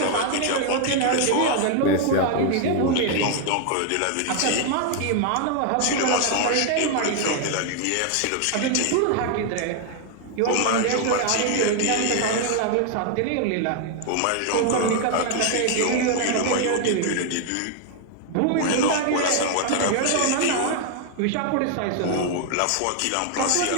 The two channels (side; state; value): both; different; correlation 0.00